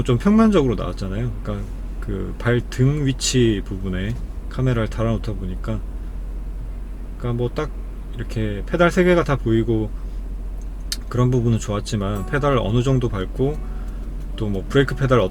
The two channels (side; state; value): both; identical; correlation 1.00